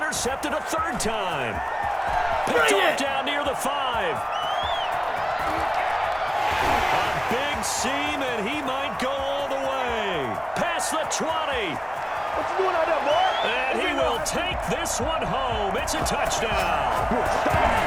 a 3rd time. Picked off down near the 5. A big seam, and he might go all the way. Past the 20. What you doing out there, boy? And he will take this one home. It's a touchdown.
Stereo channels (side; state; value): both; identical; correlation 1.00